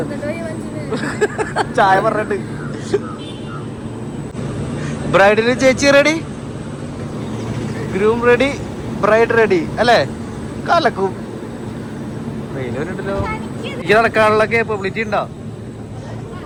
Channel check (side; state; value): both; identical; correlation 1.00